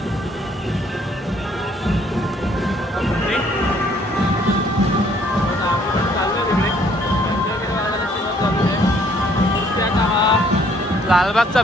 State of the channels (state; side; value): normal; both; correlation 0.63